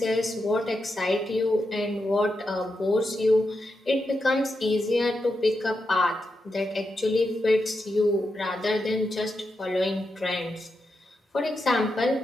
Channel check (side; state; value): both; normal; correlation 0.86